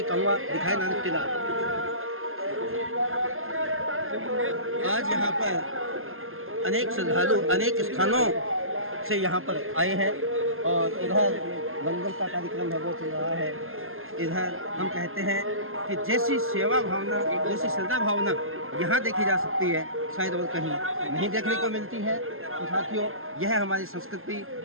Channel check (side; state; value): left; late; 0.61 ms